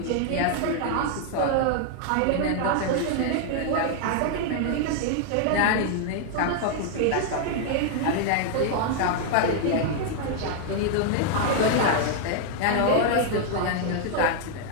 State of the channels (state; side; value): different; both; correlation 0.00